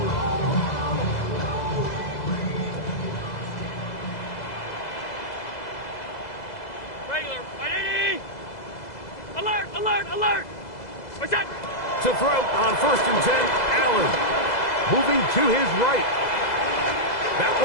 To throw on 1st and 10, Allen. Moving to his right. That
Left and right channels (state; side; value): late; right; 2.0 ms